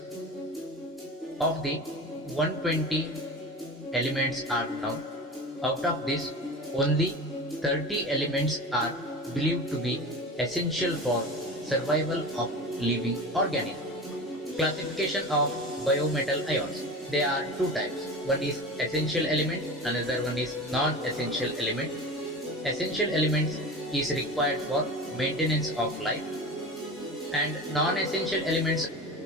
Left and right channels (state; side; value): normal; both; correlation 0.31